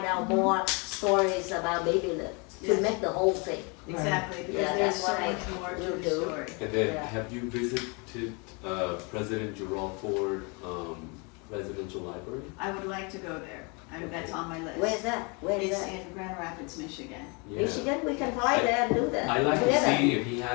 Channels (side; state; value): right; quieter; 31.4 dB